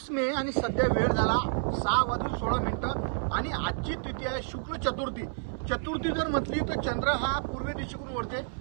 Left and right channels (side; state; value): left; silent; 58 dB below the other